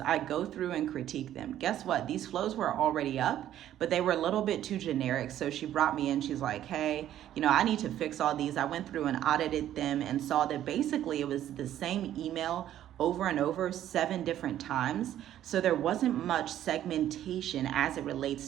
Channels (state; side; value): quieter; left; 11.8 dB